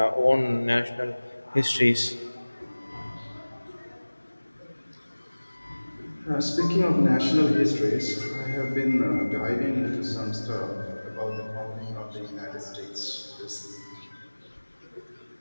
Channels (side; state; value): both; inverted; correlation -1.00